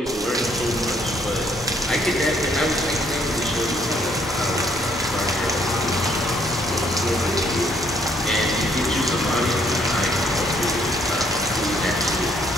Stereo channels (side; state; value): both; normal; correlation 0.67